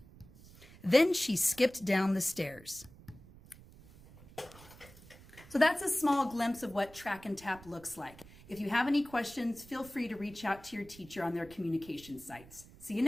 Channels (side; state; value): right; noise; rumble, 21 dB below the sound